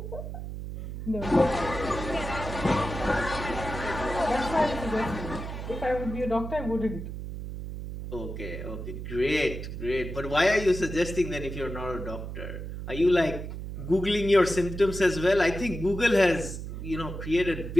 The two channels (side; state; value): right; noise; hum, 7 dB below the sound